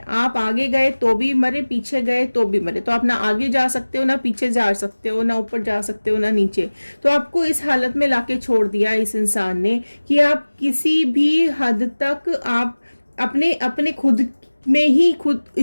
आप आगे गए तो भी मरे, पीछे गए तो भी मरे। तो आप ना आगे जा सकते हो, ना पीछे जा सकते हो, ना ऊपर जा सकते हो, ना नीचे। तो आपको इस हालत में लाके छोड़ दिया इस इंसान ने कि आप किसी भी हद तक आप अपने खुद में ही, खुद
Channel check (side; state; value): both; inverted; correlation -1.00